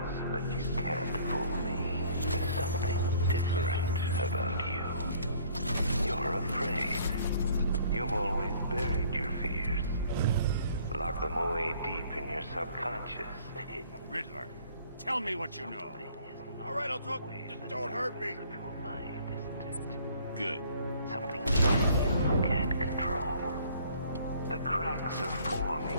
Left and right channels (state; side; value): inverted; both; correlation -0.57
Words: but you can't fool me. There's something different about you. You're afraid. You've always buried your fears. Lock them away deep in your subconscious. Riddler, tell me what you know. All right, I'll talk. Just don't hurt me. Of your mind, isn't it? Good. Something you can't control. The cracks are forming